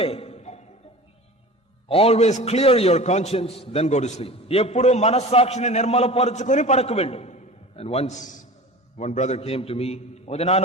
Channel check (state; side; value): normal; both; correlation 0.36